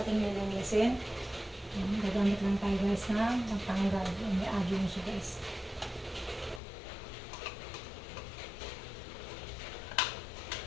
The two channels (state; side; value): drops out; right; at 6.6 s